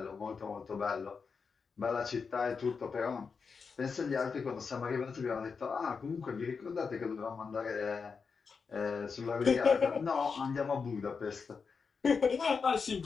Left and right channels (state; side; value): quieter; right; 5.4 dB